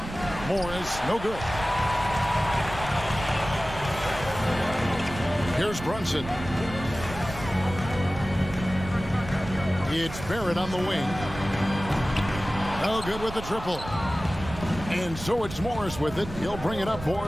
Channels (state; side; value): noise; right; rumble, 11 dB below the sound